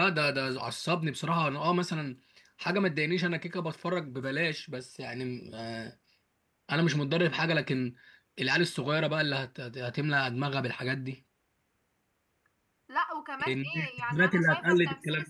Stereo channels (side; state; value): both; identical; correlation 1.00